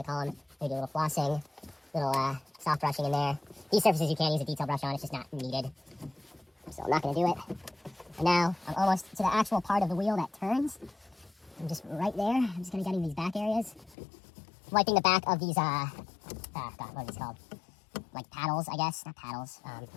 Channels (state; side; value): drops out; right; at 14.0 s